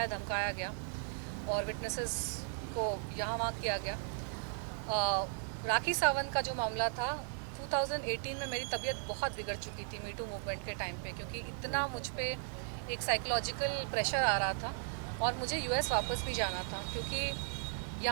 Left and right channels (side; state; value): left; silent; 53 dB below the other